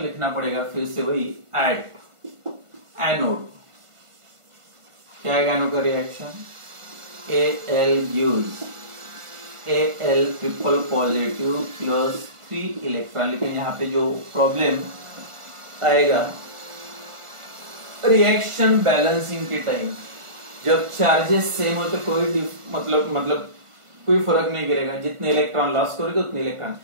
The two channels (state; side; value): late; left; 1.5 ms